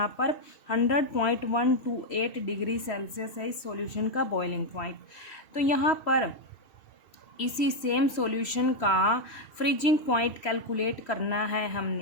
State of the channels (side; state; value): right; late; 3.1 ms